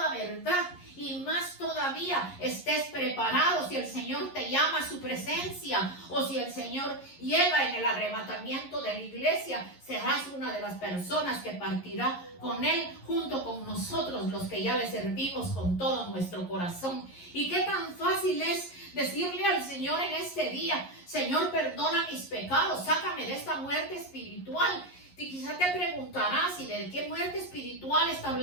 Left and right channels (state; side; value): late; right; 11 ms